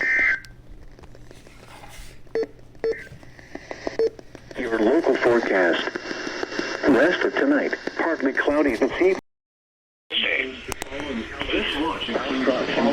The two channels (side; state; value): both; identical; correlation 1.00